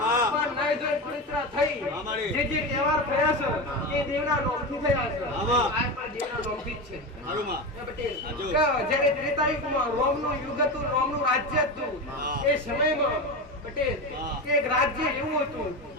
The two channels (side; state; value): both; normal; correlation 0.21